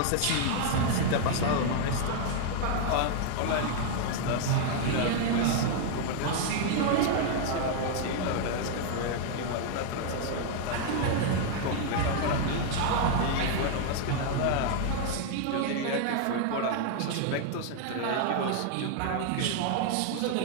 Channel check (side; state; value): both; different; correlation 0.00